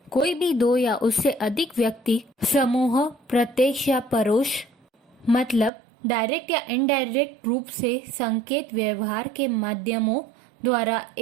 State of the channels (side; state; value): left; drops out; at 5.7 s